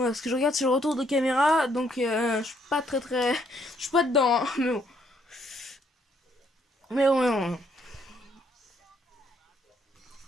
parce que je regarde sur le retour de caméra, donc je suis pas très... Je suis pas dedans, hein, mais bon. Mais bon.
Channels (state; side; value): normal; both; correlation 0.69